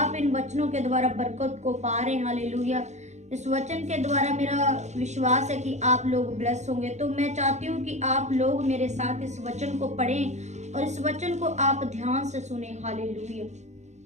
इन वचनों के द्वारा बरकत को पा रहे हैं। हालेलुया। इस वचन के द्वारा मेरा विश्वास है कि आप लोग ब्लेस होंगे। तो मैं चाहती हूँ कि आप लोग मेरे साथ इस वचन को पढ़ें और इस वचन को आप ध्यान से सुने। Hallelujah.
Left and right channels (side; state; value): left; late; 0.33 ms